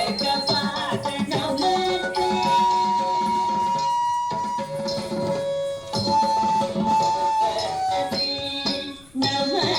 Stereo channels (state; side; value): noise; left; rumble, 27 dB below the sound